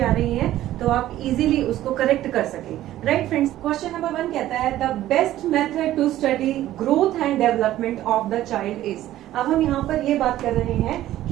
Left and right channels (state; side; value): quieter; left; 13.9 dB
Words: आ रही हैं तो आप इजीली उसको करेक्ट कर सके। राइट फ्रेंड्स, क्वेश्चन नंबर 1 कहता है the best method to study growth and development of the child is. अब हम यहाँ पर ये बात कर रहे हैं